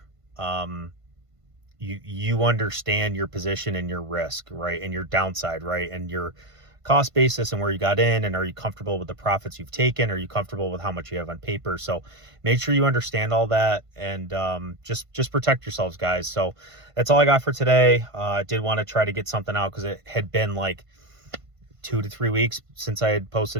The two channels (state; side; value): late; left; 1.5 ms